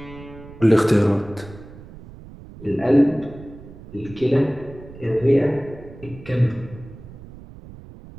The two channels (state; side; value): noise; right; rumble, 17 dB below the sound